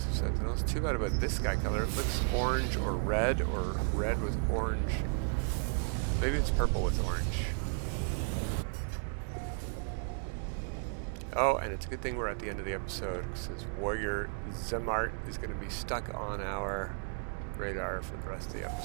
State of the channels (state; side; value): silent; left; 55 dB below the other